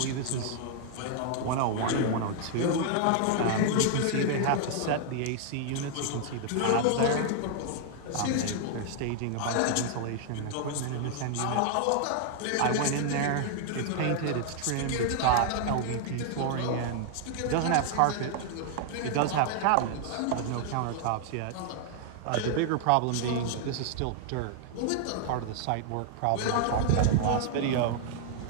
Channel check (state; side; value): different; both; correlation 0.00